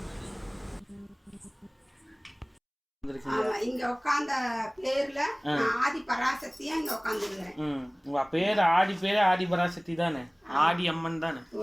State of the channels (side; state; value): both; identical; correlation 1.00